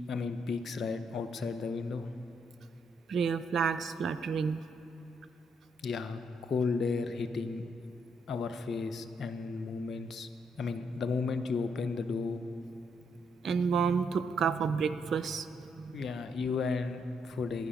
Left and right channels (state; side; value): normal; both; correlation 0.75